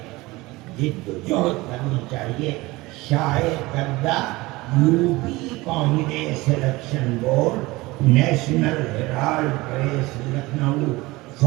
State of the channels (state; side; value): quieter; left; 21.1 dB